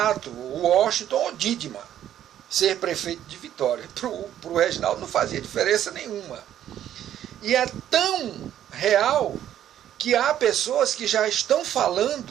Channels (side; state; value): left; quieter; 11.1 dB